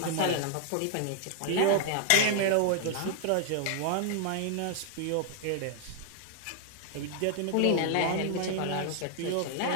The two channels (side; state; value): both; different; correlation 0.00